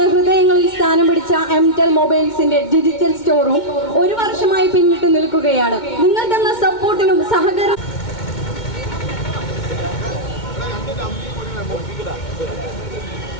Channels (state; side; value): late; right; 2.2 ms